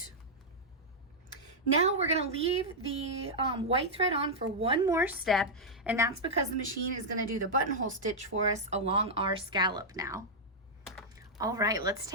Now we're going to leave the white thread on for one more step, and that's because the machine is going to do the buttonhole stitch for us along our scallop now. All right, let's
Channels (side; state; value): both; normal; correlation -0.06